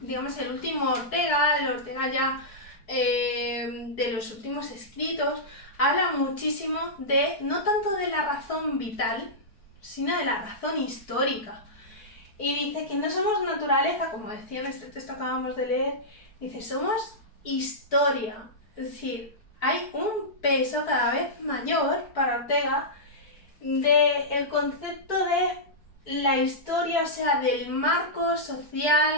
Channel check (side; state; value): right; late; 4.6 ms